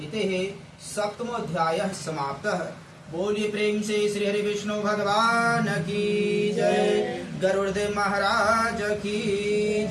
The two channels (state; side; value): identical; both; correlation 1.00